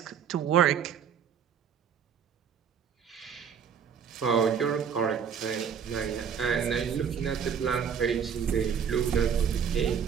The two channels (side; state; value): left; quieter; 7.5 dB